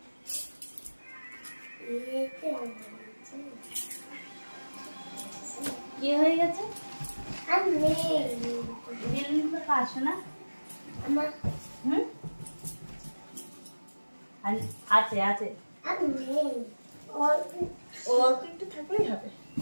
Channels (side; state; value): both; inverted; correlation -1.00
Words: কি হয়ে গেছে বেলুন তো পারছো না হুম আছে আছে অল্প একটু থাকলেই হবে